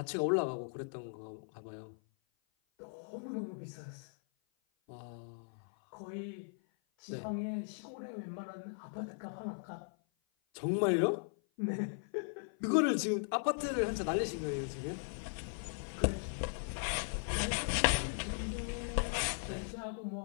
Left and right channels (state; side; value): silent; right; 52 dB below the other